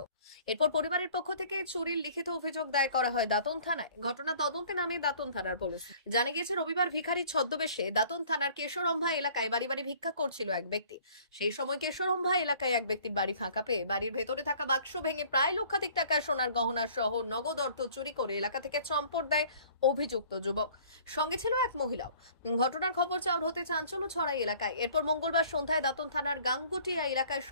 এরপর পরিবারের পক্ষ থেকে চুরির লিখিত অভিযোগ দায়ের করা হয় দাঁতন থানায়। ঘটনা তদন্তে নামে দাঁতন থানার পুলিশ। জানা গিয়েছে রবিবার ভিখারি ছদ্মবেশে দাঁতন থানার কেশরম্ভা এলাকায় বাড়ি বাড়ি ভিক্ষা করছিল এক ব্যক্তি। সেই সময় কেশরম্ভা এলাকায় এক ব্যক্তির বাড়ি ফাঁকা পেয়ে বাড়ির ভেতরে থাকা বাক্স ভেঙে প্রায় লক্ষাধিক টাকার সোনার গহনা সহ নগদ অর্থ চুরি করে এলাকা থেকে চম্পট দেয় অভিযুক্ত যুবক। সঙ্গে ছিল এক মহিলাও। ঘটনার খবর চাউর হতে চাঞ্চল্য ছড়ায় এলাকায়। এরপর মঙ্গলবার সন্ধ্যায় দাঁতন থানার গাঙ্গুটিয়া এলাকায়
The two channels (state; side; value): inverted; both; correlation -0.53